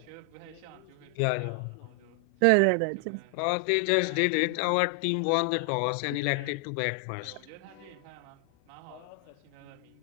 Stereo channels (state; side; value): different; both; correlation 0.00